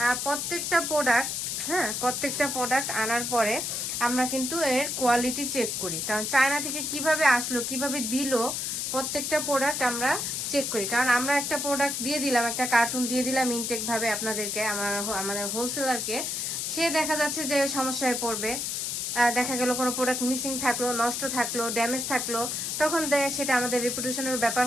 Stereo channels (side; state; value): left; noise; hiss, 2 dB below the sound